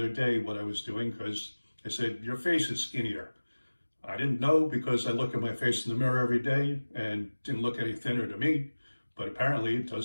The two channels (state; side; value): inverted; both; correlation -1.00